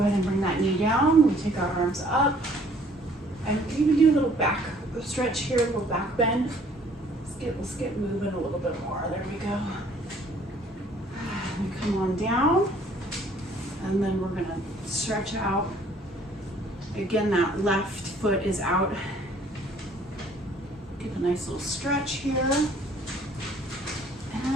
and bring that knee down, we take our arms up, and even do a little back stretch here, a little back bend. Let's get moving a little bit more, there we go. And come on down, and then we're gonna stretch out. Again, that left foot is out. Get a nice little stretch here.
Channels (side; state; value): both; normal; correlation 0.59